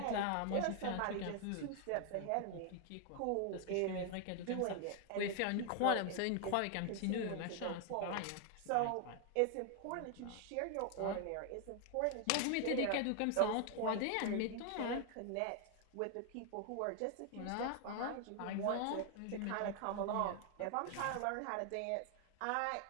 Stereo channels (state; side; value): different; both; correlation 0.00